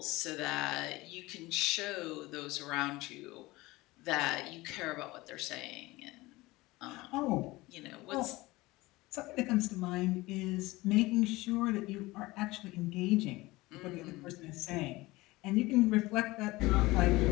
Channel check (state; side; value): quieter; right; 20.5 dB